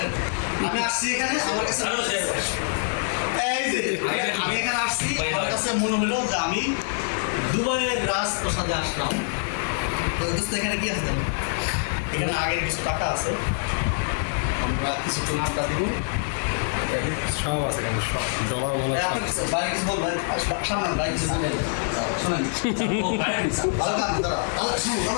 আমি আসছি এখানে আমার কাছে এই যে আমি এখানে আসছি আমার কাছে মনে হলো যে আমি দুবাইয়ের রাজপ্রাসাদে আসলাম। তো দোস্ত এখানে কি আছে জানো? এখানে আগের কিছু টাকা আছে, আমরা কিছুক্ষণ আড্ডা দিব। সব আছে কেন সব জমা মনে আপনি কিছু বাইরে কিছু বলবেন, সামনে বাইরে কিছু বলবেন, শোনেন ভালো কাজ দাদা দাদা শুনুন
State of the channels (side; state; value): right; silent; digital silence